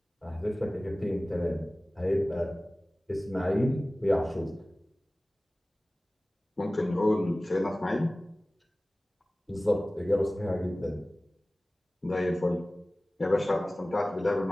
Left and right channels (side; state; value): both; normal; correlation 0.98